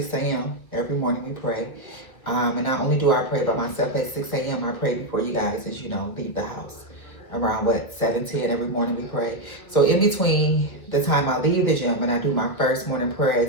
a.m. Every morning we pray. And not only do I pray by myself at 6 a.m., I pray before you guys, as you know, leave the house. Around what, 7:10 every morning we pray. So in between the time I leave the gym and I do my first morning prayer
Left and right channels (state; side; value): late; right; 1.6 ms